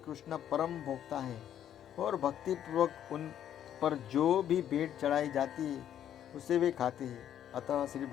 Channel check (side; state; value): right; quieter; 10.3 dB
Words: परम भोक्ता है और भक्तिपूर्वक उन पर जो भी भेंट चढ़ाई जाती है उसे वे खाते हैं। अतः श्री